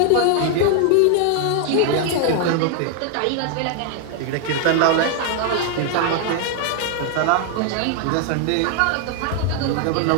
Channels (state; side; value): different; both; correlation 0.00